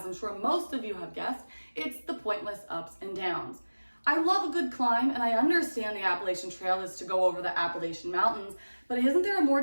I'm sure most of you have guessed, it's the pointless ups and downs. I love a good climb, and I understand the Appalachian Trail is to go over the Appalachian Mountains, but isn't there a more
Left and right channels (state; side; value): inverted; both; correlation -1.00